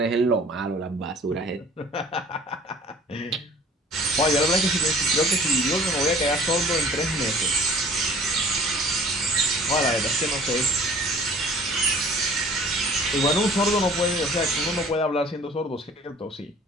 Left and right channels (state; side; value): normal; both; correlation 0.50